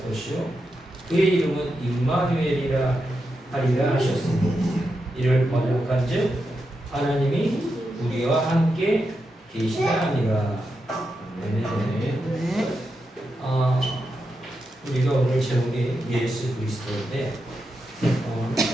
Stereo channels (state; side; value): normal; both; correlation 0.87